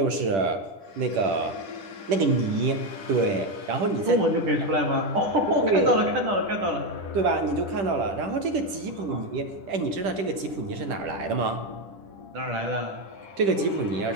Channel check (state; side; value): late; left; 10 ms